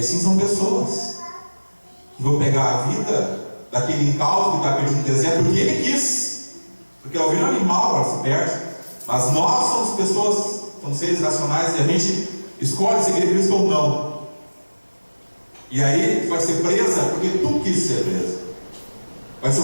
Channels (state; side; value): inverted; both; correlation -1.00